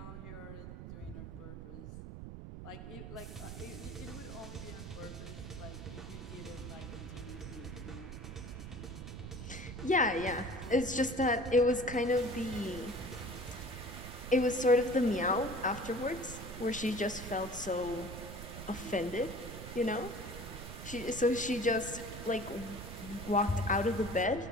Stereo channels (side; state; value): right; noise; rumble, 10 dB below the sound